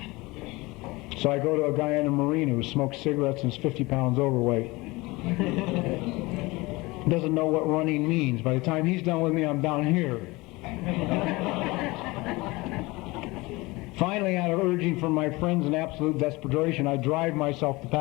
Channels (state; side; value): quieter; right; 22.6 dB